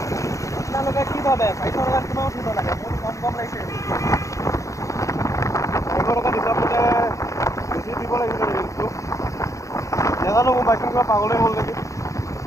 আপোনালোকে কি ভাবে 400 টকাত কিমান উঠিব লাগে? মোৰ কম লাগিছে। 400 টকা হিচাপতে বেছি দিব লাগিছিলে ৰেঞ্জটো। নাজানো, মোৰ বাইকখন কিবা পাগলেই হ'ল নেকি।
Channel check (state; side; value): late; right; 0.15 ms